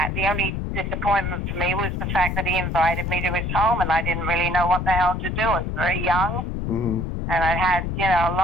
the only disappointment for me was the fact that he invited me to his home and I didn't really know what the hell to do. I was very young Mhm. and I had, a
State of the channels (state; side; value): noise; left; rumble, 2 dB below the sound